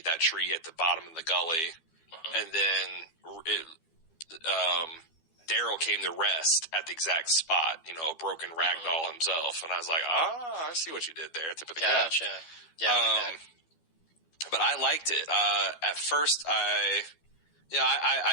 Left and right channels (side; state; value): right; late; 12 ms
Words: that tree at the bottom of the gully. And then Daryl came to rest at the exact spot, a broken rag doll himself. And I was like, I see what you did there. Tip of the cap. Gotcha. Yeah, but I liked it. At first, I